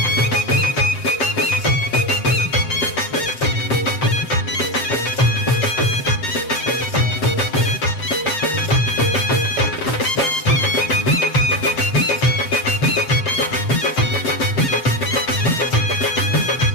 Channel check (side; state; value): right; late; 7.6 ms